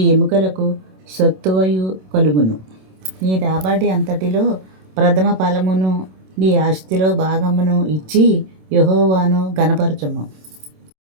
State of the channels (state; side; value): late; left; 27 ms